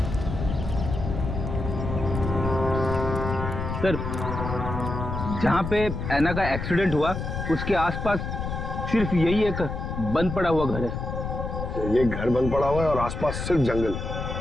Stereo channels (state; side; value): noise; left; rumble, 5 dB below the sound